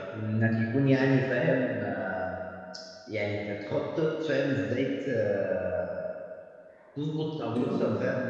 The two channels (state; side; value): identical; both; correlation 1.00